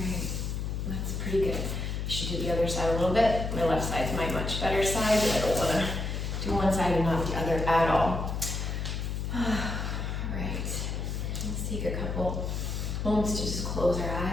that's pretty good. I should do the other side a little bit. My left side's my much better side, but I don't want to do one side and not the other at all. All right, let's take a couple moments to just close our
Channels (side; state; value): left; noise; hum, 3 dB below the sound